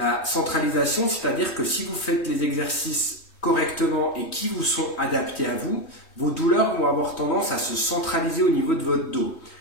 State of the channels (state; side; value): late; right; 3.2 ms